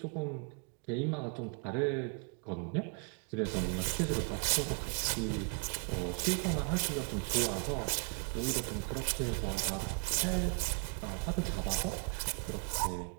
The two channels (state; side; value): quieter; left; 38.2 dB